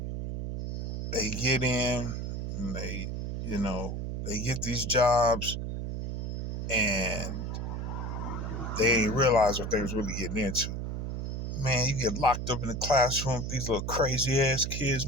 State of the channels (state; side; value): noise; right; hum, 3 dB below the sound